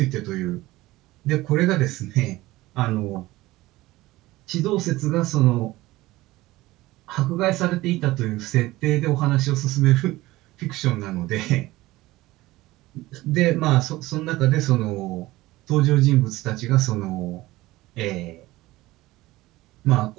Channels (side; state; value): left; quieter; 18.4 dB